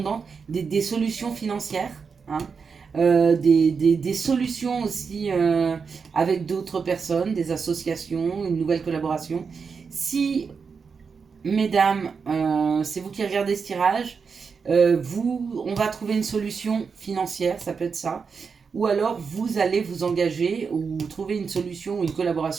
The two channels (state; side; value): quieter; left; 5.6 dB